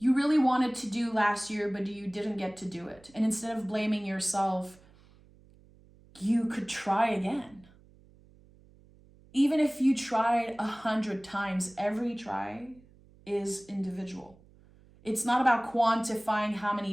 really wanted to do last year, but you didn't get to do it? And instead of blaming yourself, you could try again. Even if you tried 100 times, every try is individual. It's not about quantifying how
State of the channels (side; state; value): right; noise; hum, 27 dB below the sound